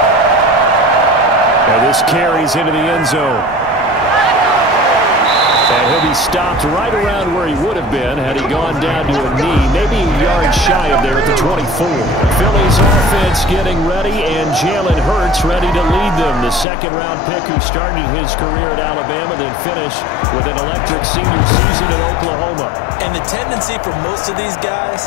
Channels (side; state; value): right; drops out; at 16.7 s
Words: And this carries into the end zone. And he'll be stopped right around where he would have been had he gone down to a knee, maybe a yard shy of there at the 24. Philly's offense getting ready, and Jalen Hurts ready to lead them. The second-round pick who started his career at Alabama, then finished with an electric senior season in Oklahoma. And the tendency for most of these